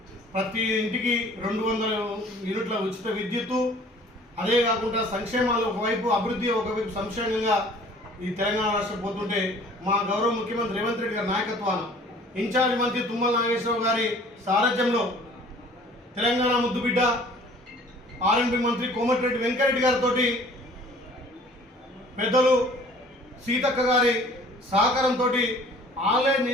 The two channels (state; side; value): normal; both; correlation 0.51